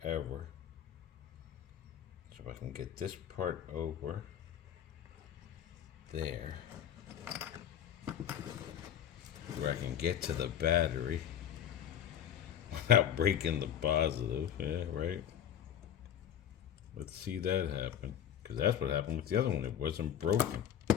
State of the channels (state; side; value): quieter; right; 9.7 dB